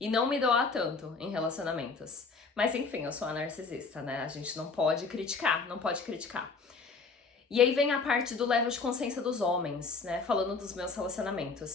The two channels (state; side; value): quieter; right; 4.5 dB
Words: não me doar tanto em relacionamentos. Mas enfim, eu sou a narcisista, né? A gente não pode criticar. E aí vem a parte do level de consciência dos homens, né? Falando dos meus